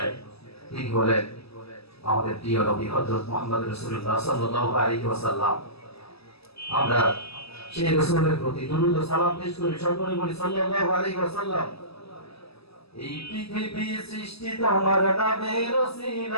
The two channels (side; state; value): right; late; 0.78 ms